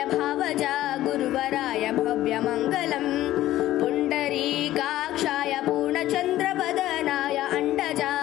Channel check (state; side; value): quieter; right; 14.5 dB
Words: भावजा गुरुवराय भव्यमङ्गलम् पुण्डरीकाक्षाय पूर्णचन्द्रवदनाय